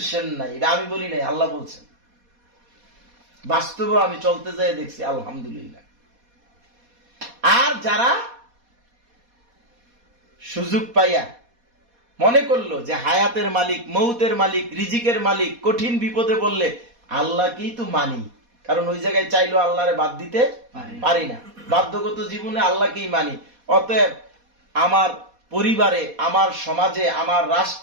নাই। এটা আমি বলি নাই, আল্লাহ বলছেন। বাস্তবে আমি চলতে যাই দেখছি, আলহামদুলিল্লাহ। আর যারা সুযোগ পাইয়া মনে করলো যে হায়াতের মালিক, মৌতের মালিক, রিজিকের মালিক, কঠিন বিপদে বললে আল্লাহকেই তো মানি, কারণ ওই জায়গায় চাইলো আল্লাহরে বাদ দিতে পারি না, বাধ্যগত জীবনে আল্লাহকেই মানি। অতএব আমার পরিবারে, আমার সমাজে, আমার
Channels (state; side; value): late; left; 4.2 ms